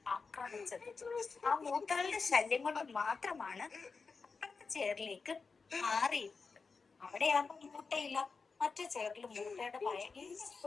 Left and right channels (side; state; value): right; quieter; 4.7 dB